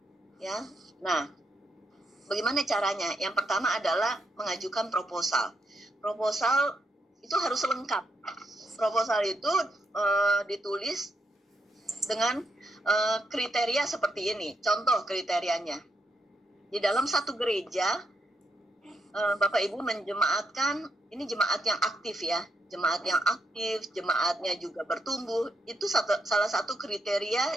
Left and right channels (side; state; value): both; normal; correlation 0.80